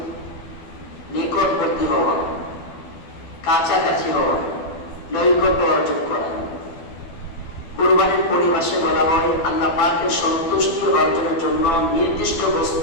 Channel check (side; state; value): right; late; 12 ms